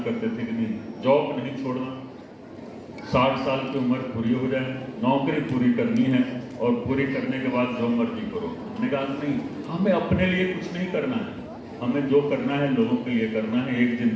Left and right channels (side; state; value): both; identical; correlation 1.00